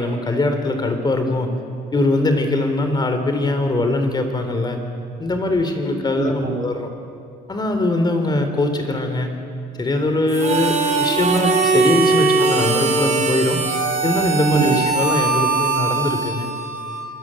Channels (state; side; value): normal; both; correlation 0.53